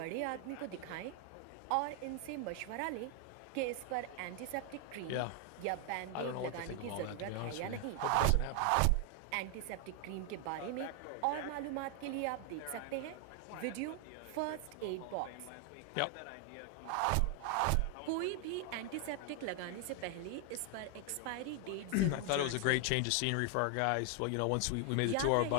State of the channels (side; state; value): both; different; correlation 0.00